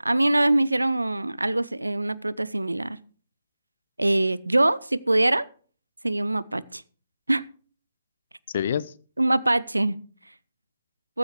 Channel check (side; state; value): both; inverted; correlation -0.97